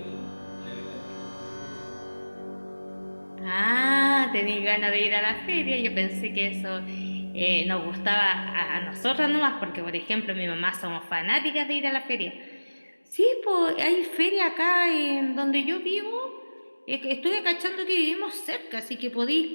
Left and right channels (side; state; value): both; inverted; correlation -1.00